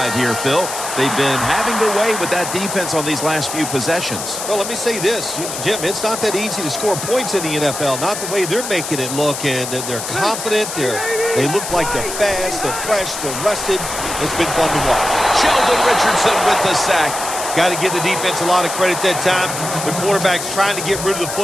here, Phil. They've been having their way with that defense on these last few possessions. Well, let me say this, Jim, it's not that easy to score points in the NFL, not the way they're making it look, and they're confident, they look like they're fast, they're fresh, they're rested. It's been fun to watch. Sheldon Richardson with the sack. Got to give the defense a lot of credit that time. The quarterback's trying to get rid of the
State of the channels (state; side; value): noise; left; hiss, 6 dB below the sound